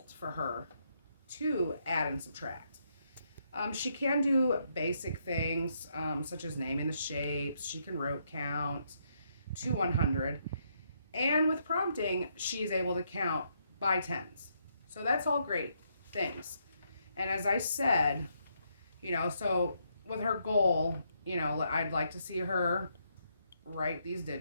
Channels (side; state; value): both; inverted; correlation -0.75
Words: for her to add and subtract. She can do basic things such as naming the shapes. She can rote count to 100. And with prompting, she's able to count by tens. So that's all great things. And as I said, so with her goal, I'd like to see her write these